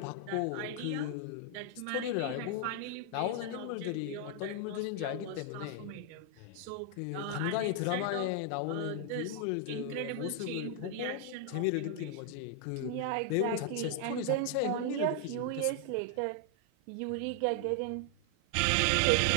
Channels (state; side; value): different; both; correlation 0.00